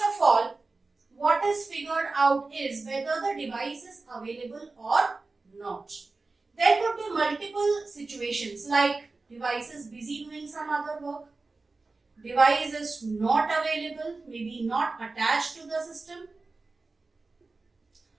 all, what is figured out is whether the device is available or not. There could be multiple situations, like device is busy doing some other work, device is not available, maybe not attached to the system,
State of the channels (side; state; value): left; quieter; 3.6 dB